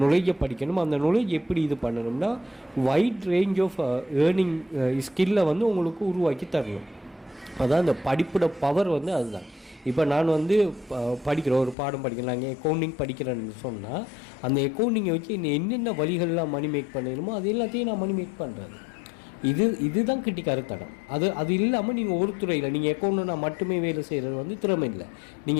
நாலேஜை படிக்கணும். அந்த நாலேஜ் எப்படி இது பண்ணணும்னா வைட் ரேஞ்ச் ஆஃப் ஏர்னிங் ஸ்கில்லை வந்து உங்களுக்கு உருவாக்கி தரணும். அதான் இந்த படிப்போட பவர் வந்து அதுதான். இப்போ நான் வந்து படிக்கிறேன், ஒரு பாடம் படிக்கிறேன், நாங்கள் அக்கௌண்டிங் படிக்கிறேன்னு சொன்னால் அந்த அக்கௌண்டிங்கை வச்சு என்னென்ன வழிகள்லாம் மணி மேக் பண்ணணுமோ அது எல்லாத்தையும் நான் மணி மேக் பண்ணுறது. இதுதான் கிட்டிக்காரத்தனம். அது இல்லாமல் நீங்கள் ஒரு துறையில் நீங்கள் அக்கௌண்ட்னா மட்டுமே வேலை செய்கிறது வந்து திறமை இல்லை.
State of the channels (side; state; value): right; drops out; at 11.8 s